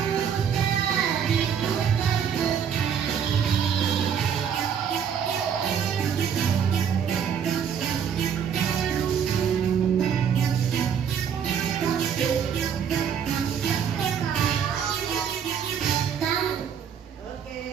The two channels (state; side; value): quieter; left; 7.8 dB